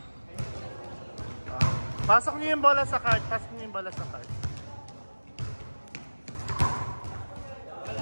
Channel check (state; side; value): inverted; both; correlation -1.00